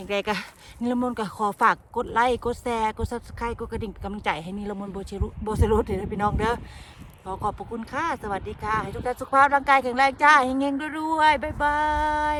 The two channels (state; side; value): identical; both; correlation 1.00